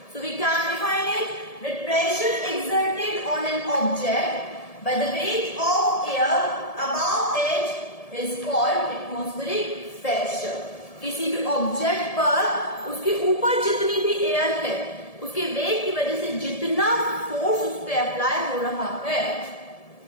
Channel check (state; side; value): late; right; 1.7 ms